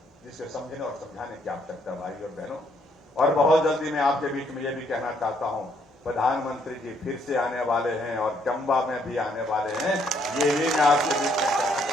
जिसे समझने और समझाने की आवश्यकता भाई और बहनों। और बहुत जल्दी मैं आपके बीच में ये भी कहना चाहता हूं, प्रधानमंत्री जी फिर से आने वाले हैं और चंबा में भी आने वाले हैं। ये भी मैं आपके बीच में कहना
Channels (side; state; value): both; normal; correlation 0.70